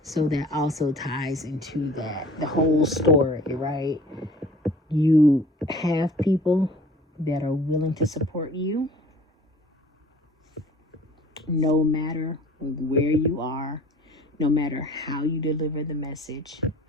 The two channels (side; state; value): both; normal; correlation 0.47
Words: So that also ties into that, the whole story, right? You have people that are willing to support you no matter where you are, no matter how you deliver the message.